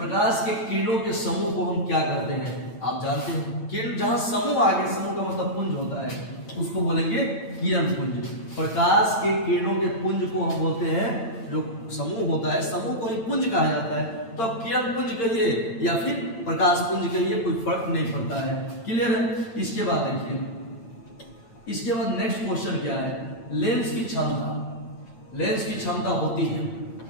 के किरणों के समूह को हम क्या कहते हैं, आप जानते हैं। किरण जहां समूह आगे, समूह का मतलब पुंज होता है, उसको बोलेंगे किरण पुंज। प्रकाश के किरणों के पुंज को हम बोलते हैं, जो समूह होता है समूह को ही पुंज कहा जाता है। तो अब किरण पुंज कहिए या फिर प्रकाश पुंज कहिए, कोई फर्क नहीं पड़ता है। क्लियर है। इसके बाद देखिए, इसके बाद नेक्स्ट क्वेश्चन क्या है, लेंस की क्षमता। लेंस की क्षमता होती है,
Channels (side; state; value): right; late; 8.9 ms